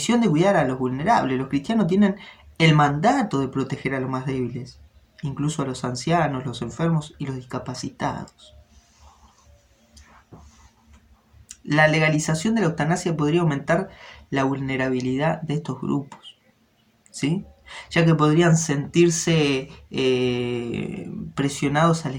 de cuidar a los vulnerables. Los cristianos tienen el mandato de proteger a los más débiles, incluso a los ancianos, los enfermos y los discapacitados. La legalización de la eutanasia podría aumentar la vulnerabilidad de estos grupos, ¿sí? Ya que podrían sentirse presionados a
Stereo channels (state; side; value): identical; both; correlation 1.00